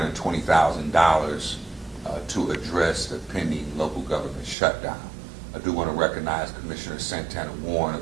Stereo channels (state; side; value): drops out; left; at 4.5 s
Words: to address the pending local government shutdown. I do want to recognize Commissioner Santana Warren